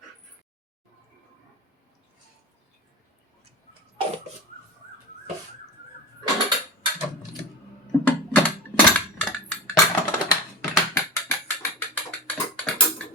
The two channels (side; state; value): both; normal; correlation 0.30